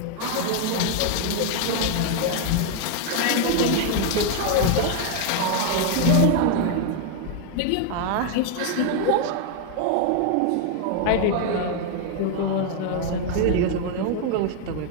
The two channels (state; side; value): different; both; correlation 0.01